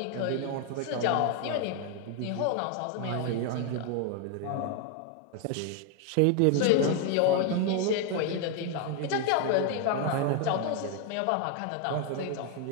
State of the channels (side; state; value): both; different; correlation 0.01